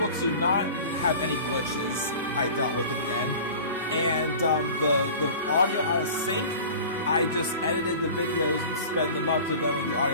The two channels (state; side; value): inverted; both; correlation -0.39